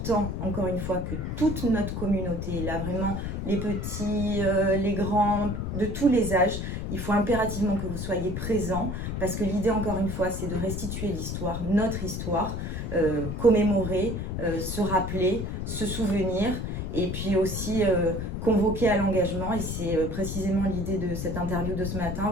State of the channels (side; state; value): left; noise; rumble, 4 dB below the sound